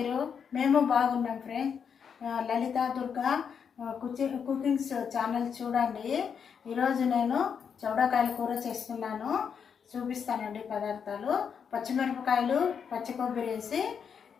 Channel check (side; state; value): right; quieter; 7.0 dB